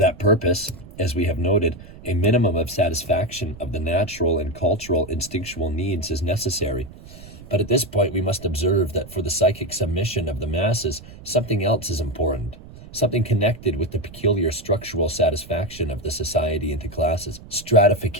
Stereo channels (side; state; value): right; noise; rumble, 17 dB below the sound